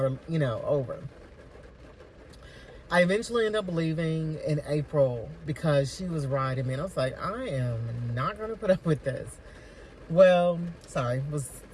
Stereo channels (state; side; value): identical; both; correlation 1.00